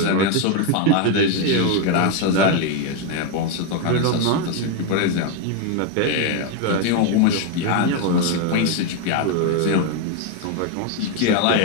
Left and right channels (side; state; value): both; different; correlation 0.02